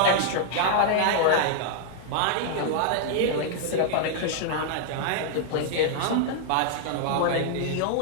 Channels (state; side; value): different; both; correlation 0.00